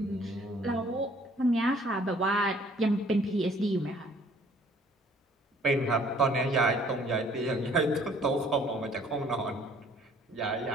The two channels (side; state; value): both; normal; correlation 0.58